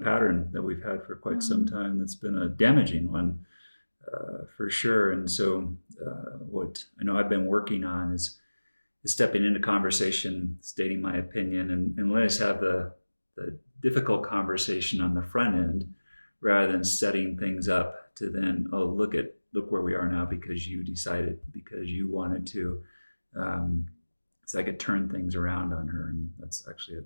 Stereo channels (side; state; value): both; inverted; correlation -1.00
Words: that we've had for quite some time. That's been a damaging one, for sure. And so what I know I've been working on is stepping into conversation, stating my opinion, and let us have the difficult conversation on the front end, rather than setting things up to then, look where we are now because you decided, because you wanted to. So I could turn things around on her, and that's actually a